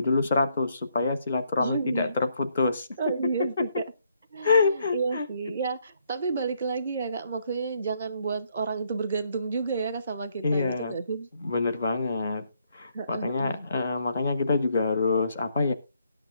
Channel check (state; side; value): inverted; both; correlation -0.72